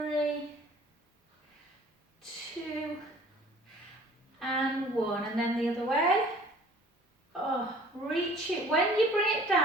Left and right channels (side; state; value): both; normal; correlation 0.51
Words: 2 and 1, and then the other way. Oh, reach it. When you bring it